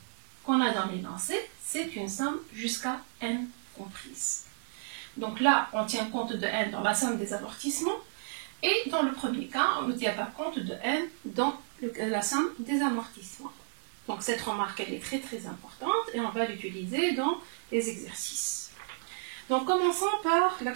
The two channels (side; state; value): left; silent; digital silence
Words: qu'on a dans l'énoncé, c'est une somme jusqu'à N comprise. Donc là, on tient compte de N dans la somme des amortissements. Et dans le premier cas, on ne tient pas compte de N dans la somme des amortissements. Donc cette remarque, elle est très très importante et on va l'utiliser dans les exercices. Donc commençons par la